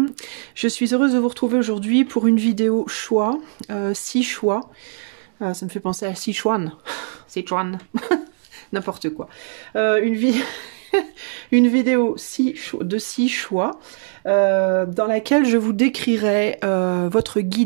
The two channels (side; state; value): left; silent; digital silence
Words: Je suis heureuse de vous retrouver aujourd'hui pour une vidéo choix, 6 choix. Ça me fait penser à Sichuan, Sichuan, n'importe quoi. Une vidéo de 6 choix dans laquelle je vous décrirai votre